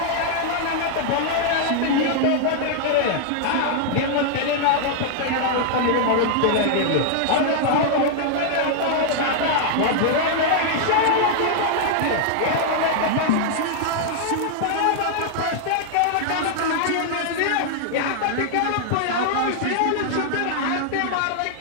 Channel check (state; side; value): different; both; correlation -0.01